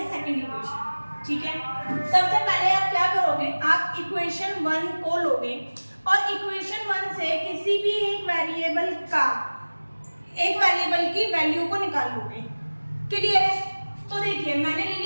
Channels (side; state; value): both; inverted; correlation -1.00